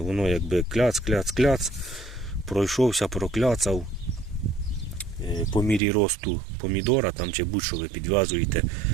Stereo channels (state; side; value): drops out; left; at 5.8 s